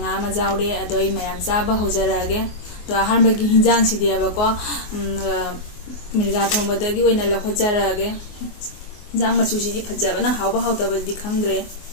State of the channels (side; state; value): right; late; 24 ms